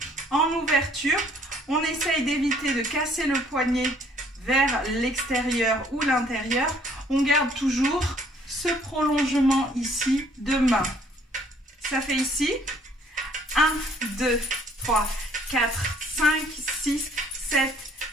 En ouverture, on essaye d'éviter de casser le poignet vers l'extérieur ou l'intérieur, on garde toujours ce prolongement ici de main. Ça fait ici 1, 2, 3, 4, 5, 6, 7,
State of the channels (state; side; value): normal; both; correlation 0.61